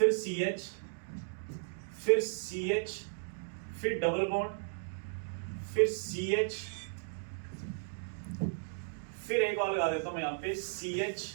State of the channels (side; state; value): left; silent; digital silence